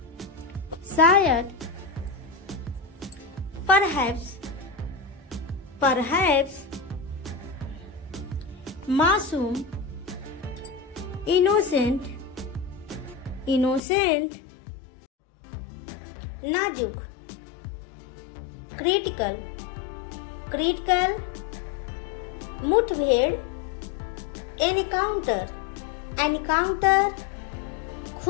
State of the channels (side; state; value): right; drops out; at 13.8 s